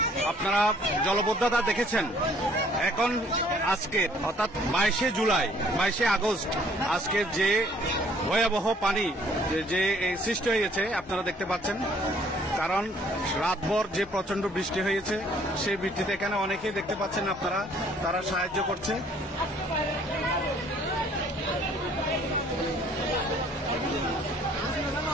আপনারা জলবদ্ধতা দেখেছেন, এখন আজকে অর্থাৎ 22শে জুলাই, 22শে আগস্ট আজকের যে ভয়াবহ পানি যে সৃষ্টি হয়েছে আপনারা দেখতে পাচ্ছেন। কারণ রাতভর যে প্রচন্ড বৃষ্টি হয়েছে, সেই বৃষ্টিতে এখানে অনেকেই দেখতে পাচ্ছেন আপনারা, তারা সাহায্য করছে।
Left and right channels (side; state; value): both; normal; correlation 0.59